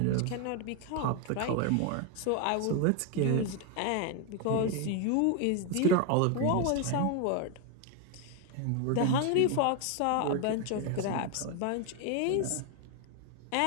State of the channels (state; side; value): different; both; correlation 0.01